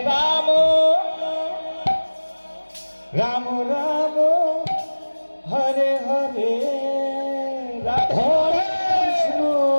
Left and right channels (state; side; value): inverted; both; correlation -1.00